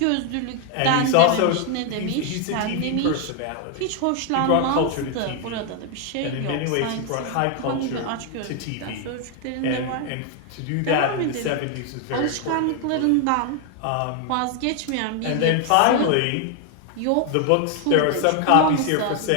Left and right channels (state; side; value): different; both; correlation 0.01